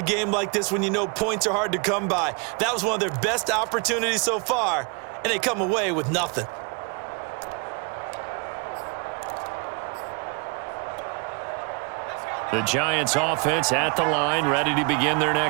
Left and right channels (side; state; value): left; quieter; 33.8 dB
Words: game like this when you know points are hard to come by. That was one of their best opportunities so far, and they come away with nothing. The Giants offense at the line, ready to begin their